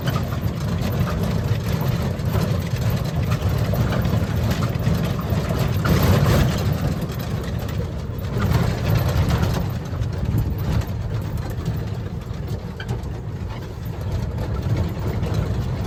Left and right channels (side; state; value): both; identical; correlation 1.00